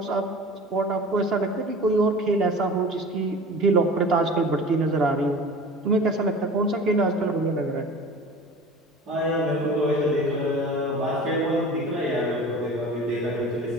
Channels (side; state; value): both; normal; correlation 0.39